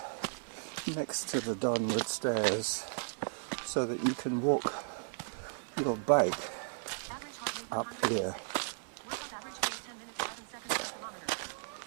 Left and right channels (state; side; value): silent; left; 54 dB below the other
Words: next to the Donwood stairs so that you can walk your bike up here.